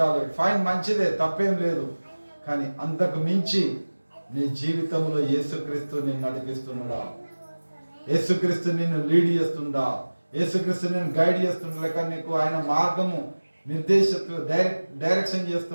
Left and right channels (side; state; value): both; inverted; correlation -1.00